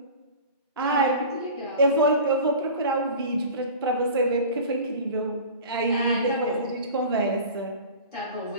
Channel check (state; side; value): inverted; both; correlation -0.38